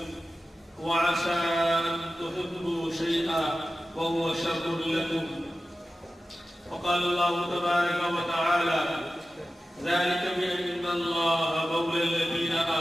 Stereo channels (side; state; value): both; normal; correlation 0.94